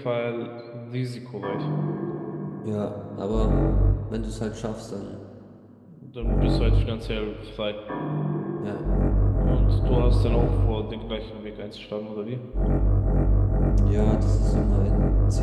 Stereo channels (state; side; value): identical; both; correlation 1.00